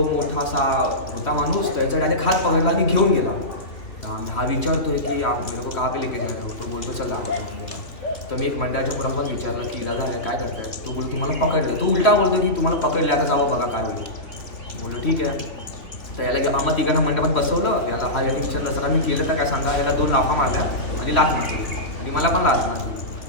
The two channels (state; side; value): late; right; 2.9 ms